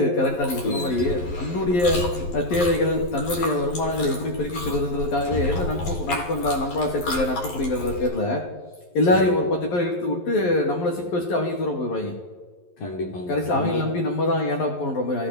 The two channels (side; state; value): right; late; 11 ms